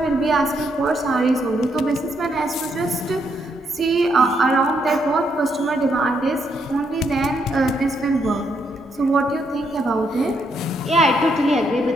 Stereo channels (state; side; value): normal; both; correlation 0.76